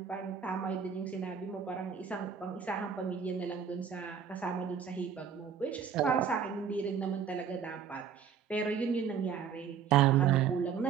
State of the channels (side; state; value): left; quieter; 7.3 dB